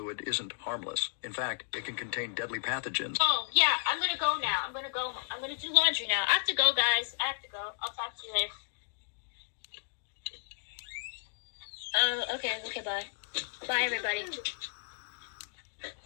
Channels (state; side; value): silent; right; digital silence